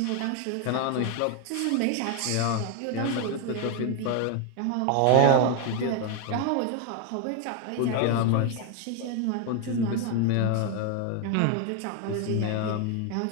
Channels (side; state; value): both; different; correlation 0.01